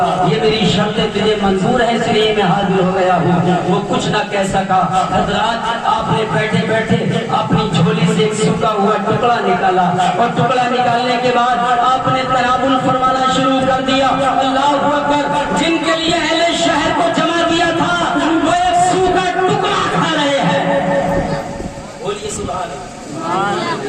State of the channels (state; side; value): identical; both; correlation 1.00